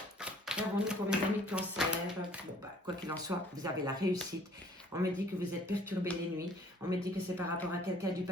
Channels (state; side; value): normal; both; correlation 0.56